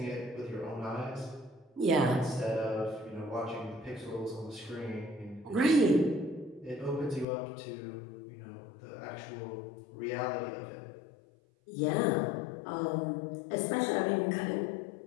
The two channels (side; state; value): right; drops out; at 7.2 s